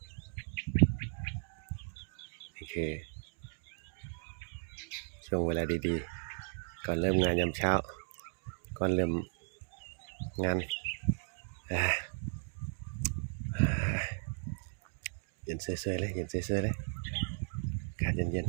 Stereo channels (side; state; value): left; silent; digital silence